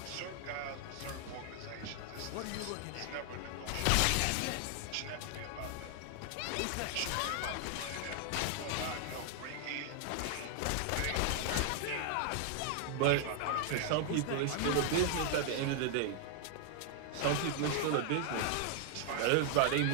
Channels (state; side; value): different; both; correlation 0.00